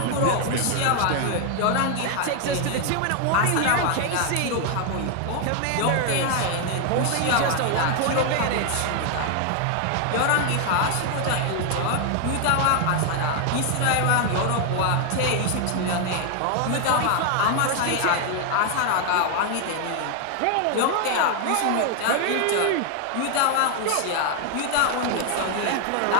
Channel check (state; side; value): different; both; correlation 0.00